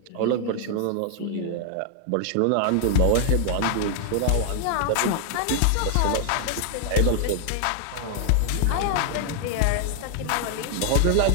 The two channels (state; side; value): different; both; correlation 0.00